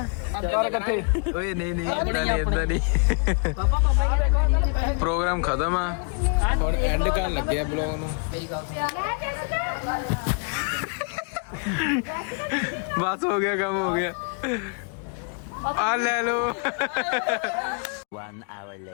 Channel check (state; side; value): quieter; right; 39.9 dB